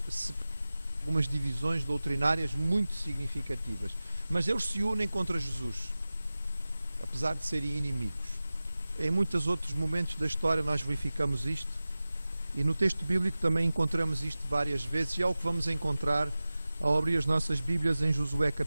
divisões doutrinárias muito significativas, mas eles se unem contra Jesus, apesar de serem inimigos. Em muitos outros momentos da história nós verificamos isto, e no texto bíblico também encontramos isto várias vezes, e é o que vamos encontrar ao abrir as nossas Bíblias em Josué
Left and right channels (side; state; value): both; inverted; correlation -0.95